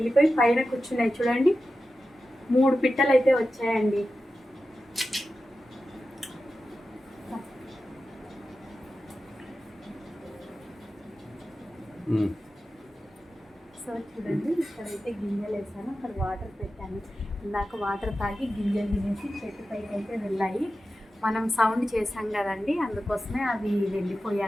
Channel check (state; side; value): normal; both; correlation 0.92